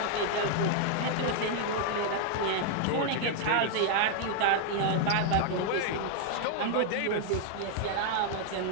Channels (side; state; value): both; different; correlation 0.00